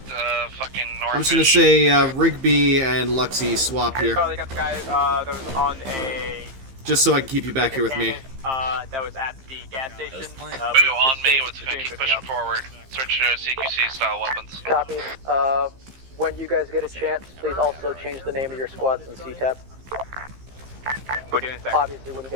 fucking north. I'm just gonna say Rigby and Luxy swap here, Charlie got the guy that was on a. just so I can keep you back here with me. That was at the gas station. Blue on me. Let's keep pushing forward. Switch to CQC style weapons. Copy. When you guys get a chance, please also change the name of your squads in CTAP. We're doing that. Obviously, wouldn't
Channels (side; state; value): left; late; 15 ms